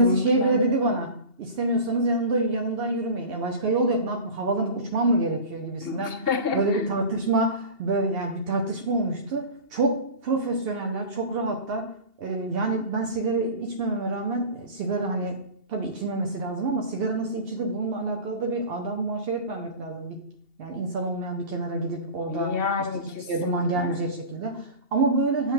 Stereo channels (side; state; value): left; late; 2.8 ms